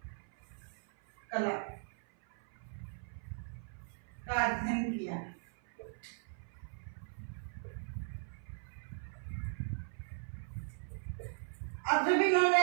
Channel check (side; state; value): left; silent; 52 dB below the other